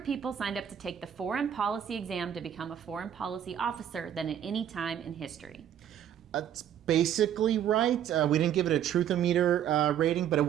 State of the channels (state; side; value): quieter; left; 9.9 dB